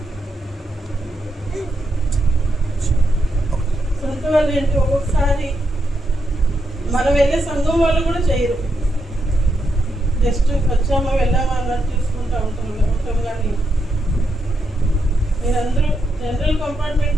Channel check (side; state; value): both; normal; correlation 0.82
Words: సొంత వాళ్ళు ఏంటి, ఒక్కొక్కసారి మనం వెళ్ళే సంఘం వాళ్ళు కూడా చేయరు. జస్ట్ వచ్చామా వెళ్ళామా అన్నట్టు చూసుకుంటూ ఉంటాం. కానీ మీరందరూ జనరల్